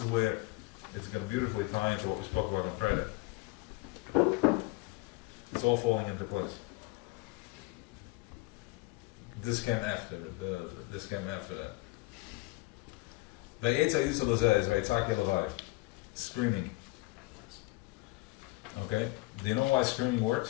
where it's going to beautifully tie into what we spoke about on Friday. It's all falling into place. This came after that. Screaming. Okay? Do you know why screaming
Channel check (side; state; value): right; quieter; 22.0 dB